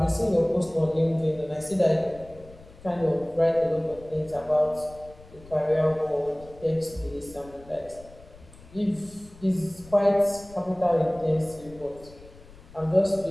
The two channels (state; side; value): noise; left; rumble, 21 dB below the sound